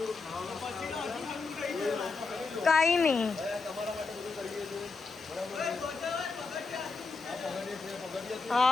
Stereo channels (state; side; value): quieter; right; 4.2 dB